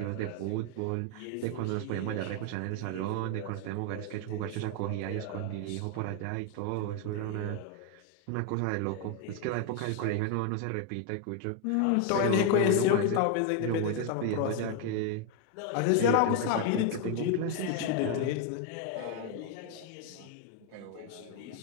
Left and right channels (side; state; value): both; different; correlation 0.01